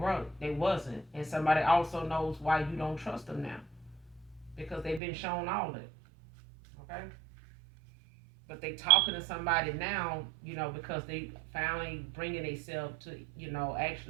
they wasn't. And somebody also knows why you don't trust them now. Because they've been shown all it. Okay? But they talking to somebody now, because they finally bringing themselves to,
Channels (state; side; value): drops out; left; at 5.0 s